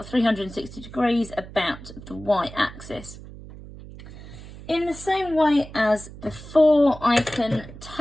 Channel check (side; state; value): right; noise; hum, 15 dB below the sound